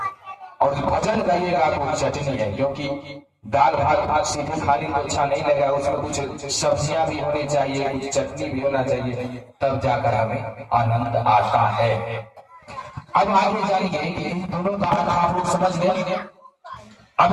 और भजन गाइएगा तो चटनी है, क्योंकि दाल भात सीधे खाली तो अच्छा नहीं लगेगा, उसमें कुछ सब्जियां भी होनी चाहिए, कुछ चटनी भी होना चाहिए, तब जाकर हमें आनंद आता है। अब आगे जानिए कि दोनों बात आप लोग समझ गए।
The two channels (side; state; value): both; identical; correlation 1.00